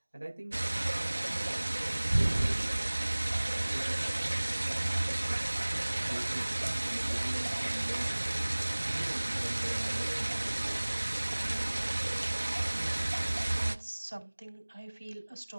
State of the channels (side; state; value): both; inverted; correlation -1.00